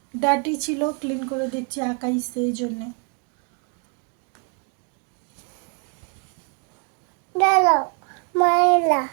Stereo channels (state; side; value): quieter; left; 38.4 dB